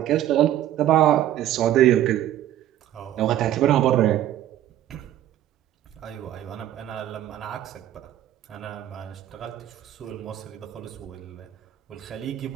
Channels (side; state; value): left; quieter; 12.4 dB